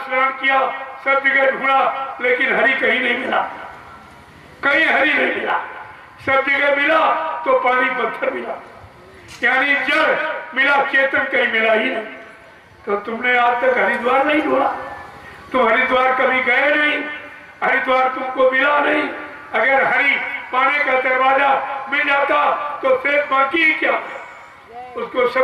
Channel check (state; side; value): identical; both; correlation 1.00